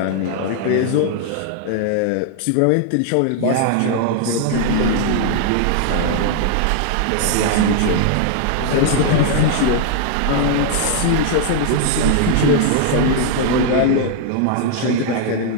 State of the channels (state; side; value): different; both; correlation 0.00